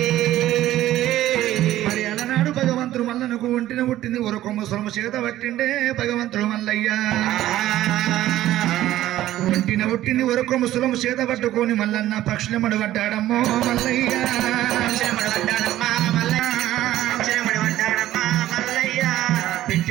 మరి అలనాడు భగవంతుడు మల్లనకు ఒంటిన పుట్టింది ఒరకొమ్మ సొలము చేత పట్టిండే భగవంతుడు మల్లయ్య. ఒంటిన పుట్టింది ఒరకొమ్మ సొలము చేత పట్టుకొని మల్లన్న పక్షుల మడబడ్డాడమ్మో మల్లయ్య.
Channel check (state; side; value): quieter; left; 14.1 dB